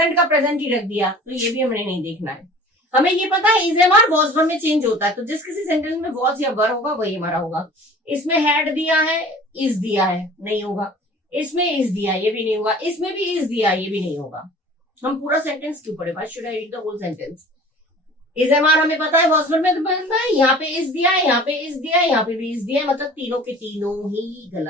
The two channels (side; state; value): both; normal; correlation 0.45